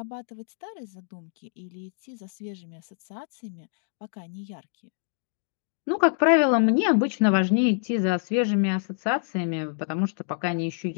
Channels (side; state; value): right; silent; 60 dB below the other